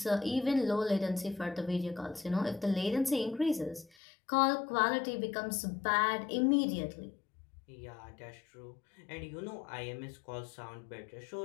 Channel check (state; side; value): drops out; right; at 3.9 s